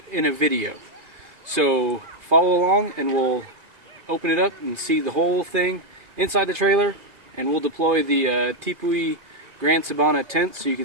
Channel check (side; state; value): left; late; 2.5 ms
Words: in a video. So follow along and we'll open it up and see the whole thing inside the trailer, and we'll deploy the Tipui Grand Sabana tent so you